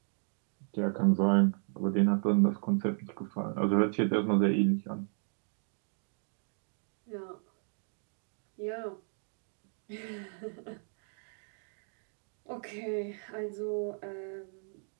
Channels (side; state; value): left; silent; 55 dB below the other